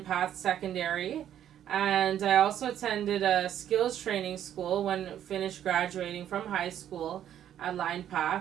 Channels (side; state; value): left; quieter; 10.6 dB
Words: Secondary. And I also attended a skills training school when finished graduating from high school at Line